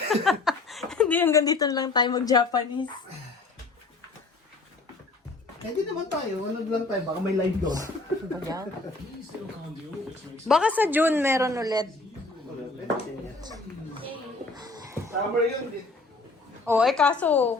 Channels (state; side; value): quieter; right; 3.5 dB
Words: Hindi hanggang dito lang tayo mag-Japanese. Eh, di naman tayo. Ano lang tayo? Baka may live doon. Baka sa June meron ulit. Summer yun. Oh, kaso,